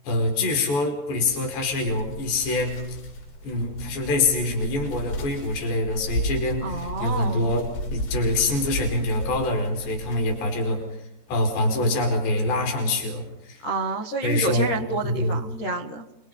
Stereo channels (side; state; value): right; late; 14 ms